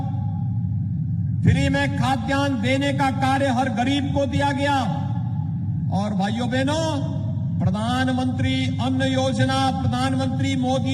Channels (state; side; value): identical; both; correlation 1.00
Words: फ्री में खाद्यान्न देने का कार्य हर गरीब को दिया गया। और भाइयों बहनों, प्रधानमंत्री अन्न योजना प्रधानमंत्री